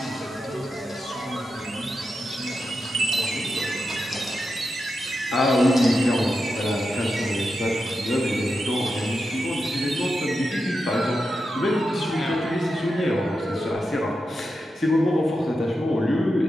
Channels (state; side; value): normal; both; correlation 0.88